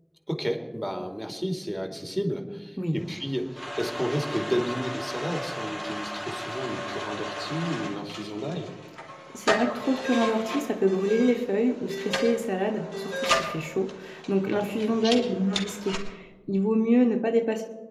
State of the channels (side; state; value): both; identical; correlation 1.00